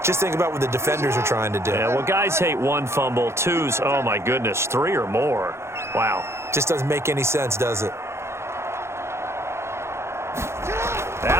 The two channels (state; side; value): late; left; 0.13 ms